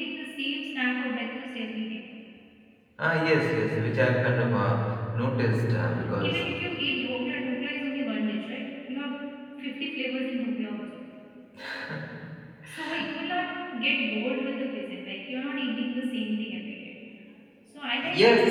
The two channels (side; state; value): both; identical; correlation 1.00